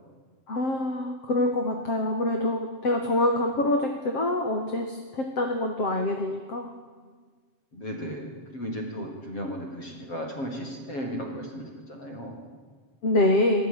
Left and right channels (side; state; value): right; late; 7.5 ms